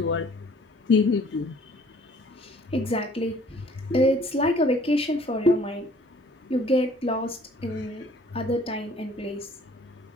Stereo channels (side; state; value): both; normal; correlation 0.55